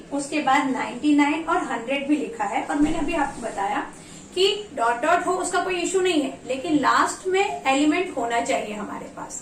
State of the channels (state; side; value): identical; both; correlation 1.00